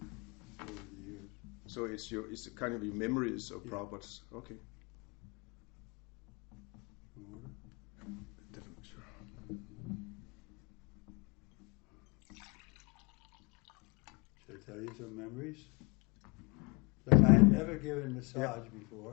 over the years. So it's kind of your memories of Prabhupada's. Okay. Water? Definitely sure. Should I tell you some memories? Like I had never given massage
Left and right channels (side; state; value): right; quieter; 28.2 dB